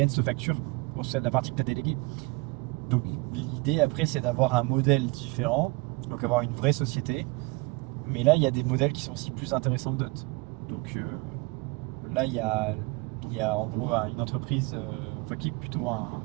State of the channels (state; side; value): quieter; left; 25.8 dB